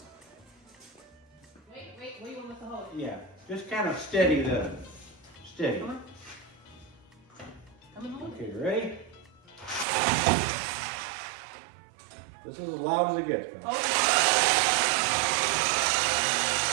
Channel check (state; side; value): drops out; left; at 9.9 s